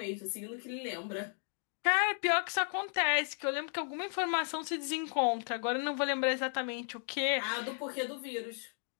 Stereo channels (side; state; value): right; silent; 55 dB below the other